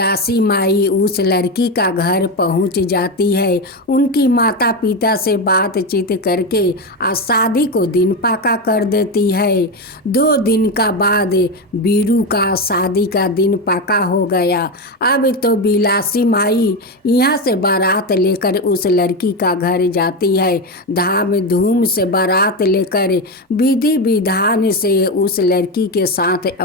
माई उस लड़की का घर पहुंच जाती है। उनकी माता पिता से बातचीत करके शादी को दिन पक्का कर देती है। 2 दिन का बाद बीरू का शादी का दिन पक्का हो गया। अब तो बिलासी माई यहाँ से बारात लेकर उस लड़की का घर जाती है। धाम धूम से बारात लेकर विधि विधान से उस लड़की के साथ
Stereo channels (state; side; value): normal; both; correlation 0.14